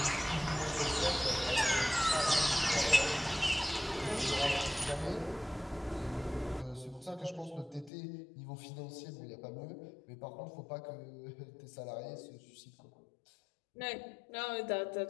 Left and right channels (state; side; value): drops out; right; at 7.9 s